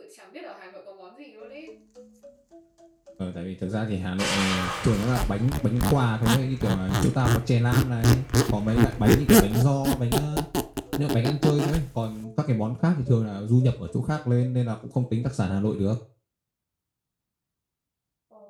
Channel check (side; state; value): both; identical; correlation 1.00